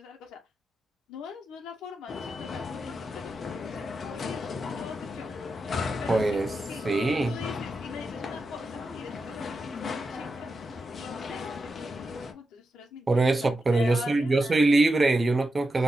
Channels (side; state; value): both; normal; correlation 0.88